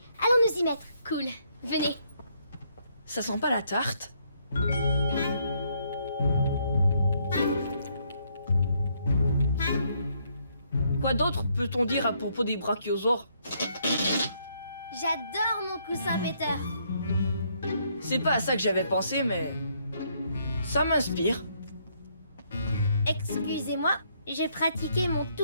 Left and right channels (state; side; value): inverted; both; correlation -0.71